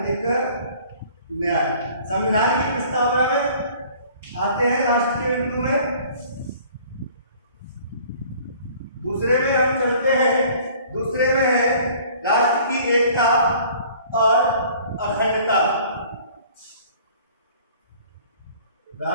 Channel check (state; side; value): inverted; both; correlation -0.52